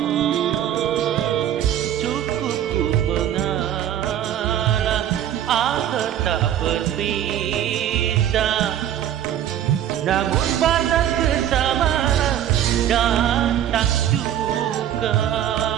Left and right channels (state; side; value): quieter; left; 10.9 dB